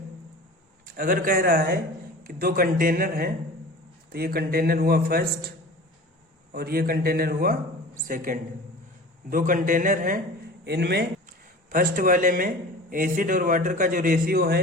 अगर कह रहा है कि दो कंटेनर हैं, तो ये कंटेनर हुआ फर्स्ट और ये कंटेनर हुआ सेकंड। दो कंटेनर हैं, इनमें फर्स्ट वाले में एसिड और वाटर का जो रेशियो है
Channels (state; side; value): normal; both; correlation 0.38